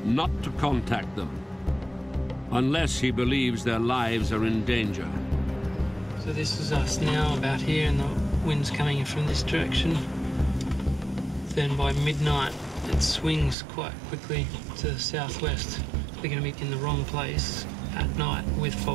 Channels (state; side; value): drops out; left; at 13.6 s